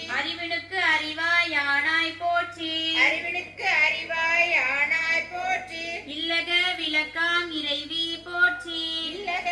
அறிவினுக்கு அறிவாய் ஆனாய் போற்றி. அறிவினுக்கு அறிவாய் ஆனாய் போற்றி. இல்லக விளக்காம் இறைவி போற்றி. இல்லக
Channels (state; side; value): identical; both; correlation 1.00